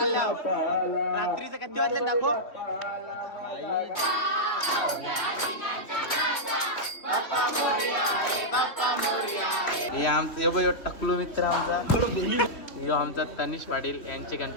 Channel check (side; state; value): right; late; 3.3 ms